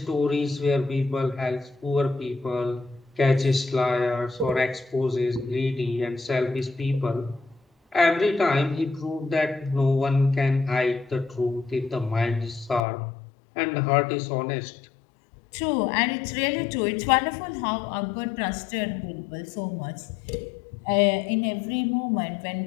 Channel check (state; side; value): drops out; right; at 12.8 s